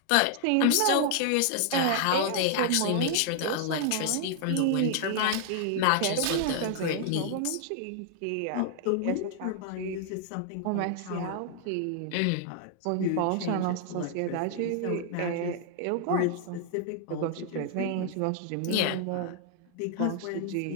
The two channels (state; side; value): different; both; correlation 0.00